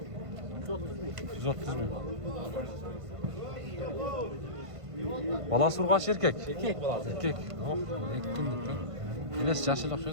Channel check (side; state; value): left; late; 1.5 ms